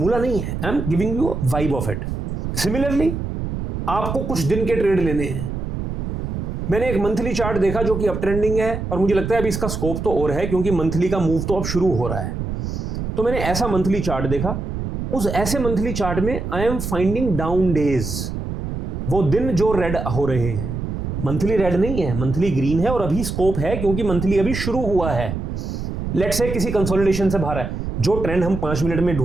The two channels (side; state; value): right; noise; rumble, 4 dB below the sound